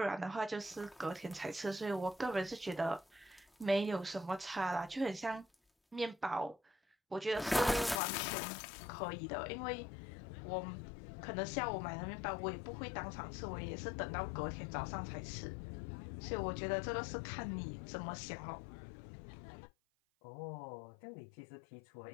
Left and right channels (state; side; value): drops out; right; at 8.0 s